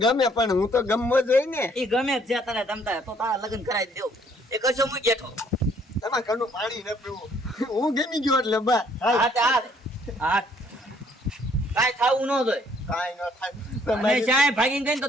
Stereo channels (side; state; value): both; normal; correlation 0.64